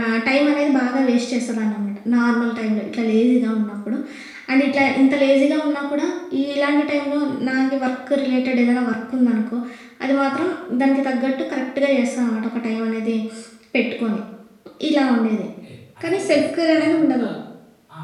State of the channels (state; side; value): identical; both; correlation 1.00